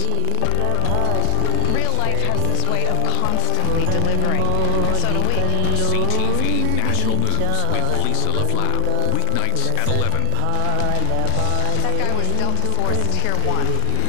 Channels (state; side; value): different; both; correlation 0.00